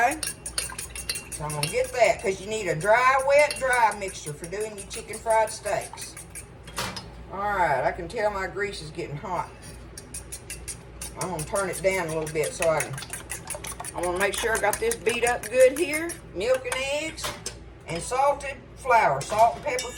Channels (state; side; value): identical; both; correlation 1.00